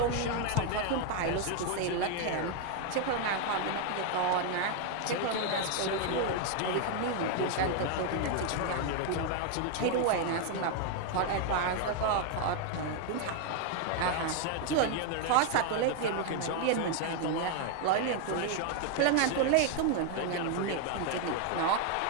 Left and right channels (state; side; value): different; both; correlation 0.01